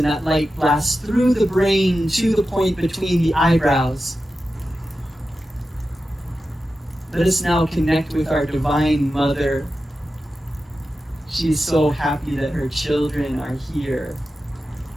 that light blasts through the brain to the point between the eyebrows. Let us now connect with our Divine Mother. She is so happy that her children are here.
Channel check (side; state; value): both; normal; correlation 0.92